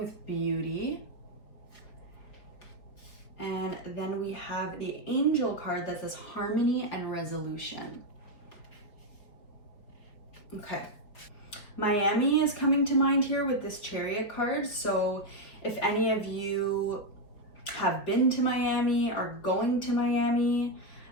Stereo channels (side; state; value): right; late; 5.0 ms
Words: beauty. And then we have the Angel card that says harmony and resolution. Okay. Miami is coming to mind here with this Chariot card. So if any of you have been to Miami or going to Miami,